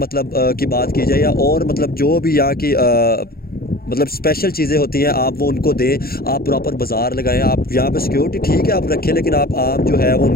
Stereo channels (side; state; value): right; late; 0.44 ms